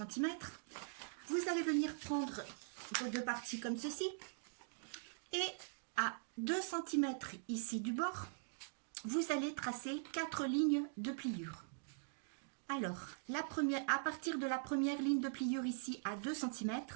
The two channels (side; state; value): left; silent; digital silence